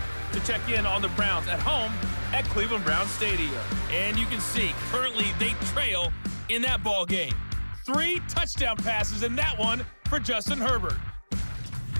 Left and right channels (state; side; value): inverted; both; correlation -1.00